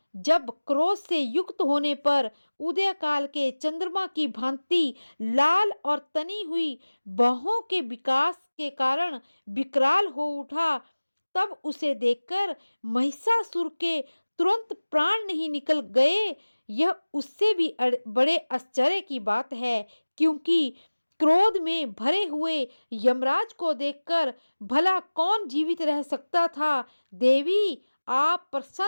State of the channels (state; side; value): inverted; both; correlation -1.00